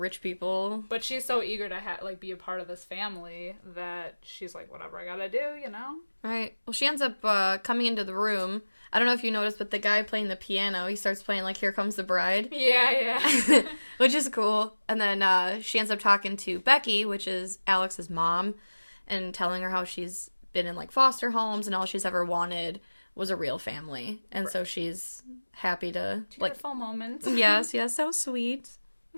people. But she's so eager to be a part of this family that she's like, whatever I gotta do, you know? Right. Well, she ends up coming into the room. I don't know if you noticed, but the guy playing the piano, he starts playing like Here Comes the Bride. Yeah. Which is cool. And then she ends up talking to Becky, which is Alex's mom, and telling her how she's been in like foster homes and all she's ever wanted was a real family. And so she's happy to like tearful moments. Yes, so sweet.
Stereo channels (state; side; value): inverted; both; correlation -1.00